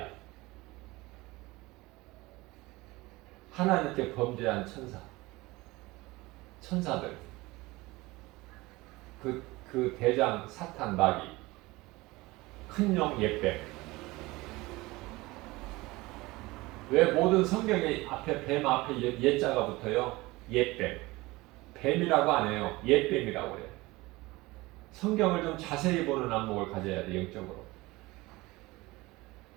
하나님께 범죄한 천사들, 그 대장 사탄 마귀, 큰 용 옛뱀. 왜 모든 성경에 앞에 뱀 앞에 옛자가 붙어요? 옛뱀. 뱀이라고 안 해요. 옛뱀이라고 해요. 성경을 좀 자세히 보는 안목을 가져야 돼, 영적으로.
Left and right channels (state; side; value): quieter; left; 21.1 dB